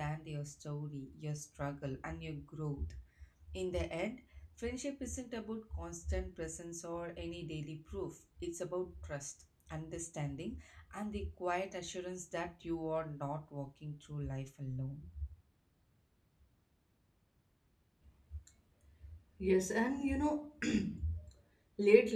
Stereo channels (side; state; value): both; identical; correlation 1.00